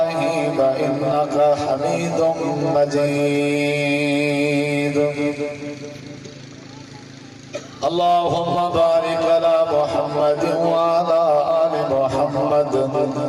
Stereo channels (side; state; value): both; identical; correlation 1.00